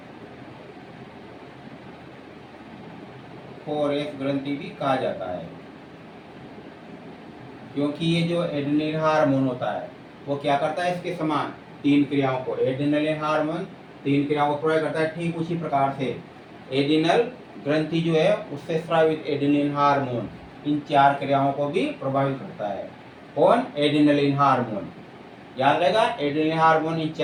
ग्रंथि भी कहा जाता है। क्योंकि ये जो एड्रेनलिन हार्मोन होता है वो क्या करता है? इसके समान 3 क्रियाओं को, एड्रेनलिन हार्मोन 3 क्रियाओं को प्रभावित करता है। ठीक उसी प्रकार से एडिनल ग्रंथि जो है उससे स्रावित एड्रेनलिन हार्मोन इन 4 क्रियाओं को भी प्रभावित करता है। कौन? Adrenaline hormone. याद रहेगा, एड्रेनलिन हार्मोन इन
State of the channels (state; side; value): identical; both; correlation 1.00